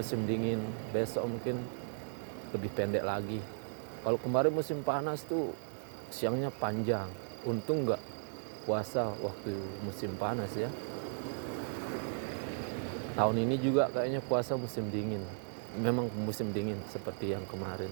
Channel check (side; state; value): left; silent; 54 dB below the other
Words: dingin, besok mungkin lebih pendek lagi. Kalau kemarin musim panas tuh siangnya panjang. Untung nggak puasa waktu musim panas ya. Tahun ini juga kayaknya puasa musim dingin. Memang musim dingin seperti yang kemarin.